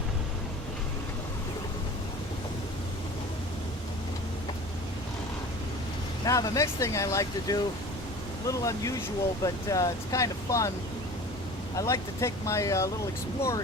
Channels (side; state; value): both; normal; correlation 0.40